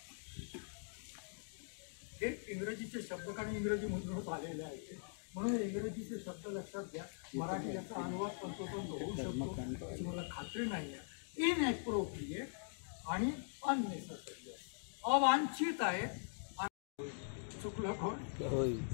हे इंग्रजीचे शब्द, कारण इंग्रजी मधूनच आलेले आहेत म्हणून इंग्रजीचे शब्द लक्षात घ्या. मराठी याचा अनुवाद तंतोतंत होऊ शकतो अशी मला खात्री नाही आहे. इनएप्रोप्रिएट आणि अननेसेसरी, अवांछित आहे. चुकलं कोण?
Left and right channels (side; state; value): right; silent; digital silence